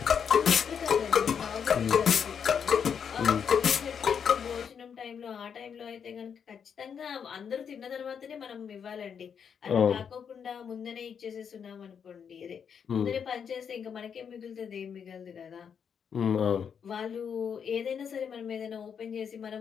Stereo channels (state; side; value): quieter; right; 7.2 dB